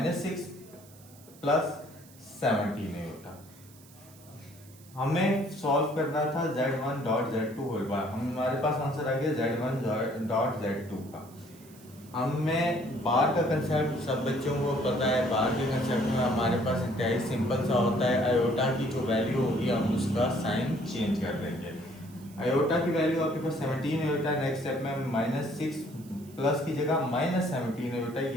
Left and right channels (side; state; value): right; noise; hiss, 24 dB below the sound